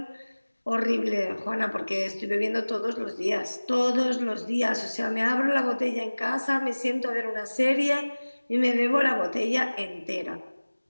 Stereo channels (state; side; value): inverted; both; correlation -1.00